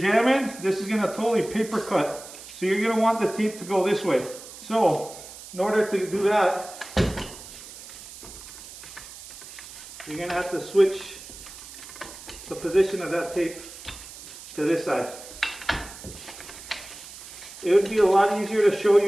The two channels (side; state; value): right; noise; hiss, 15 dB below the sound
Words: this is going to totally paper cut. So you're going to want the tape to go this way. So in order to do that, you're going to have to switch the position of that tape to this side. It would be a lot easier to show